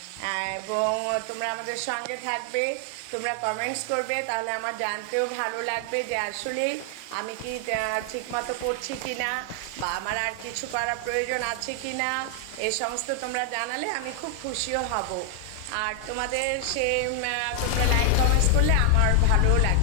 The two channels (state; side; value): different; both; correlation 0.00